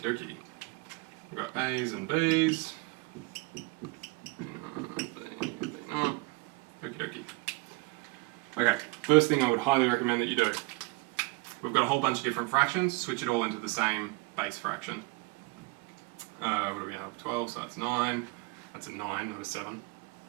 dokie. We've got A's and B's. Okie dokie. Okay, first thing I would highly recommend that you do. We've got a whole bunch of different fractions, switch it all into the same base fraction. What do we have? 12, so that's 9. That's a 9, not a 7.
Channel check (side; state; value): left; quieter; 25.1 dB